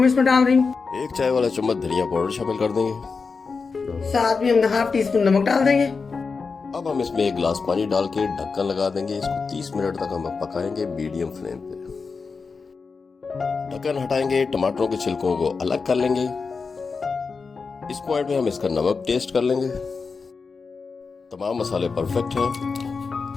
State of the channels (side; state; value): right; quieter; 4.8 dB